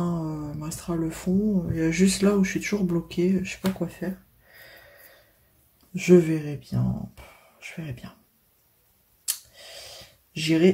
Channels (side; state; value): both; identical; correlation 1.00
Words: Il me restera le fond. Il y a juste là où je suis toujours bloquée, je sais pas quoi faire. Je verrai bien. Je verrai bien.